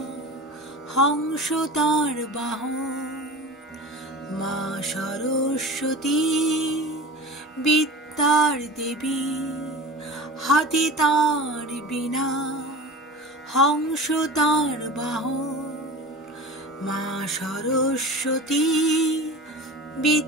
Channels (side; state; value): both; normal; correlation 0.34